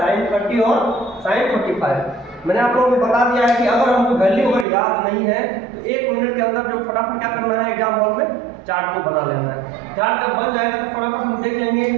sin 30 और sin 45। मैंने आप लोगों को बता दिया है कि अगर हमको वैल्यू अगर याद नहीं है तो 1 मिनट के अंदर जो फटाफट क्या करना है, एग्जाम हॉल में चार्ट को बना लेना है। चार्ट जब बन जाएगा तो फटाफट हम देख लेंगे।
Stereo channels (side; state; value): left; drops out; at 4.7 s